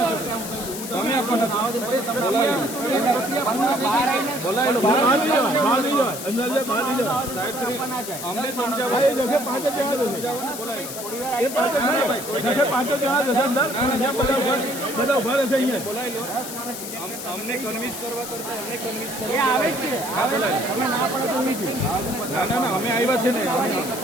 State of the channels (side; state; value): left; noise; hiss, 9 dB below the sound